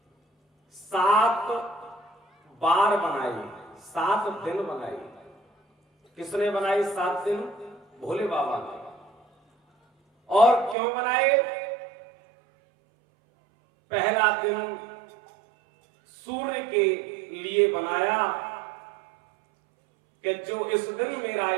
7 बार बनाई, 7 दिन बनाई। किसने बनाई 7 दिन? भोले बाबा ने। और क्यों बनाए? पहला दिन सूर्य के लिए बनाया कि जो इस दिन मेरा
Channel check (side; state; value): left; drops out; at 10.8 s